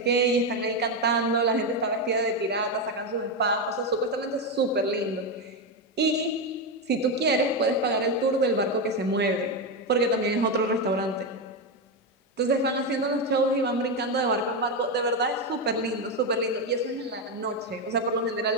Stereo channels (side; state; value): both; normal; correlation 0.09